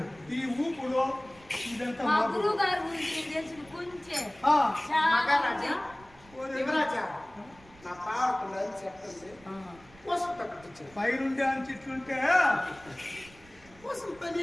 ఈ ఊపుడు ఇదంతా మా మాకు. గురువు గారి గురించి తెలిసిన కొంచెం ఆ, మహారాజా యువరాజా నా పాడుతుందని చెప్పండి ఆ. కోసం పెట్టించిన పైరుండే అని చెట్లుంటే కోసం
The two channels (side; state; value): right; noise; rumble, 25 dB below the sound